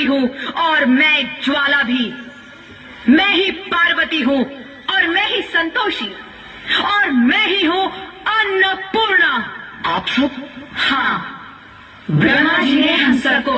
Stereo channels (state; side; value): identical; both; correlation 1.00